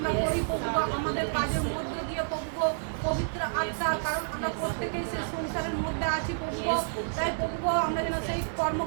করি প্রভু গো, আমাদের কাজের মধ্য দিয়ে প্রভু গো, পবিত্র আত্মা, কারণ আমরা প্রত্যেকেই সেই সংসারের মধ্যে আছি প্রভু গো, তাই প্রভু গো আমরা যেন সেই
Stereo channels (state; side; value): silent; left; 58 dB below the other